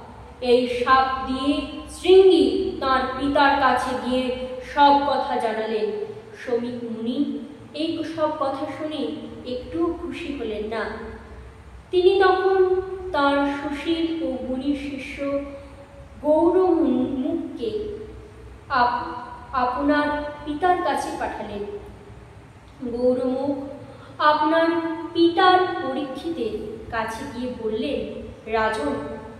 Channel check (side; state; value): both; identical; correlation 1.00